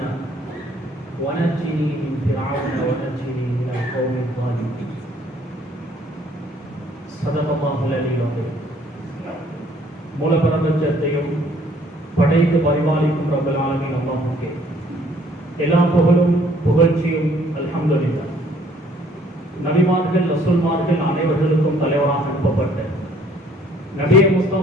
ونجني من فرعون ونجني من القوم الظالمين. صدق الله العلي العظيم. மூலப்பிரபஞ்சத்தையும் படைத்து பரிபாலிக்கும் ரப்பல் ஆலமீன் அல்லாஹ்வுக்கே எல்லா புகழும் புகழ்ச்சியும் அல்ஹம்துலில்லாஹ். நபிமார்கள் ரசூல்மார்கள் அனைவர்களுக்கும் தலைவராக அனுப்பப்பட்ட நபியே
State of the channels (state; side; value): normal; both; correlation 0.61